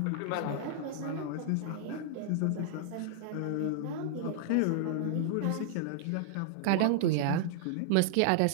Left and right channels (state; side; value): different; both; correlation -0.01